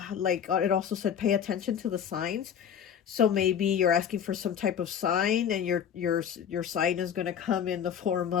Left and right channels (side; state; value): right; quieter; 8.5 dB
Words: like it also said pay attention to the signs. So maybe you're asking for some type of sign, and your sign is going to come in the form